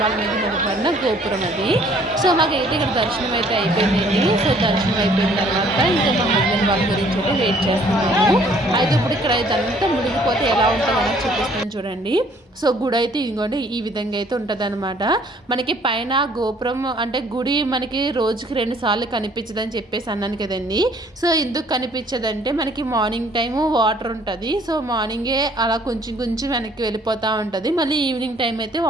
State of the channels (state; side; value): normal; both; correlation 0.59